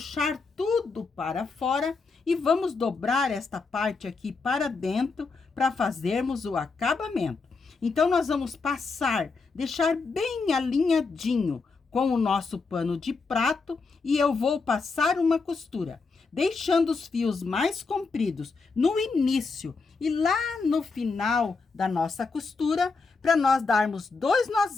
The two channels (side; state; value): right; quieter; 4.4 dB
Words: tudo para fora e vamos dobrar esta parte aqui para dentro para fazermos o acabamento. Então, nós vamos passar, deixar bem alinhadinho com o nosso pano de prato e eu vou passar uma costura, deixando os fios mais compridos no início e lá no final da nossa costura, para nós darmos 2